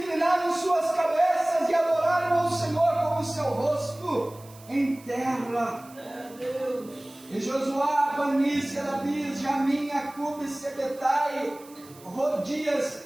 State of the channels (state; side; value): noise; right; hiss, 23 dB below the sound